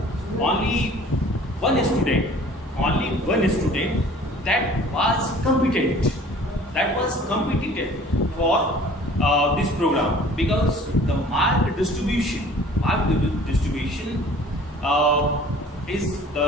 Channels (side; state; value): both; normal; correlation 0.49